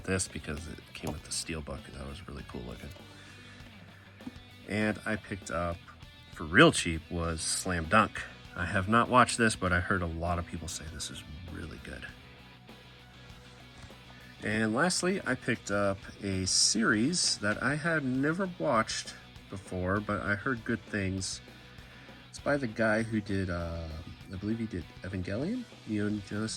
this because it came with the Steelbook, and that was really cool looking. And I picked up, for real cheap, was Slam Dunk. I have not watched this, but I heard a lot of people say this is really good. And lastly, I picked up a series that I had never watched before, but I heard good things. It's by the guy who did, I believe he did Evangelion, Neon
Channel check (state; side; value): identical; both; correlation 1.00